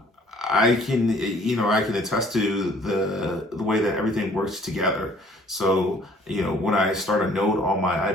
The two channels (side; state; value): both; normal; correlation 0.57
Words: I can attest to the way that everything works together. So, when I start a note on my